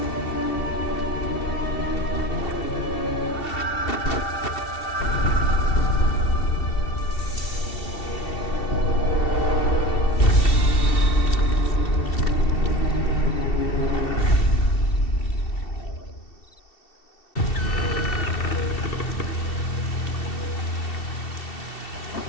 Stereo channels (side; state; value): right; late; 2.7 ms